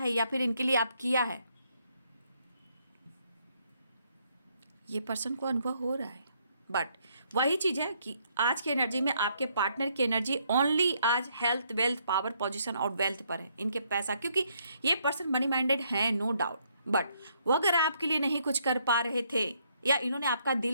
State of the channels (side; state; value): both; inverted; correlation -0.72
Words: या फिर इनके लिए आप किया है, ये पर्सन को अनुभव हो रहा है, बट वही चीज़ है कि आज की एनर्जी में आपके पार्टनर की एनर्जी ओनली आज हेल्थ, वेल्थ, पावर, पोजीशन और वेल्थ पर है, इनके पैसा, क्योंकि ये पर्सन मनी माइंडेड है, नो डाउट। बट वो अगर आपके लिए नहीं कुछ कर पा रहे थे, या इन्होंने आपका